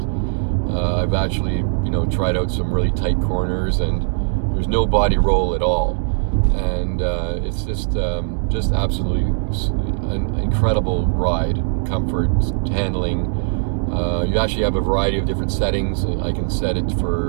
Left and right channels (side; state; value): left; silent; digital silence